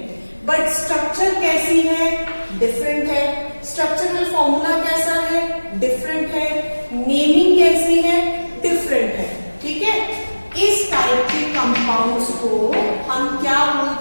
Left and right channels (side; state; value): both; inverted; correlation -1.00